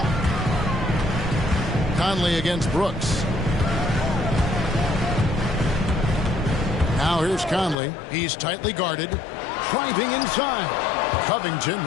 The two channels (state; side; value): drops out; right; at 7.8 s